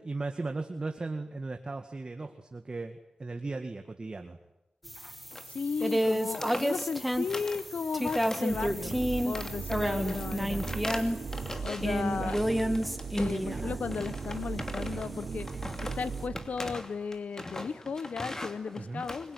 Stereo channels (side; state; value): both; normal; correlation 0.92